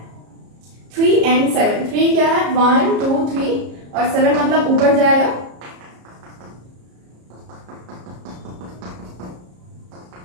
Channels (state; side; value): late; left; 33 ms